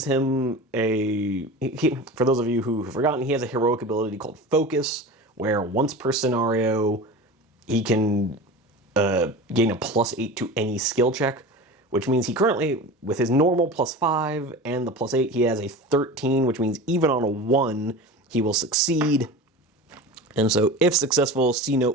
him for those of you who have forgotten, he has a heroic ability called Focus, where once per scenario, he can gain a +8 to any skill check, which means he currently, with his normal +5 and the +8, he has a 13, which means even on a 1, he will succeed. And so, if successful, see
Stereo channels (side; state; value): both; normal; correlation 0.32